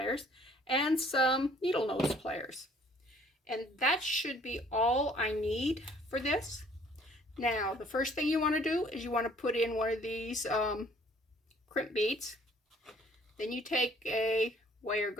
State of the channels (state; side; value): normal; both; correlation 0.58